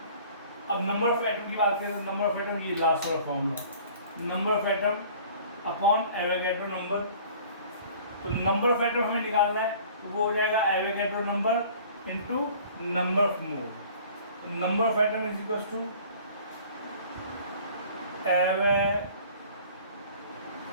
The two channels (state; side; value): inverted; both; correlation -0.49